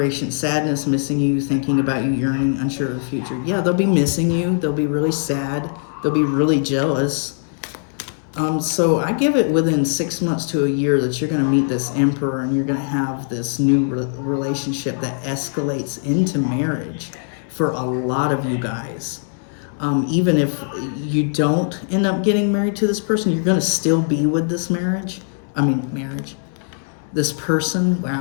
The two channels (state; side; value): silent; right; 65 dB below the other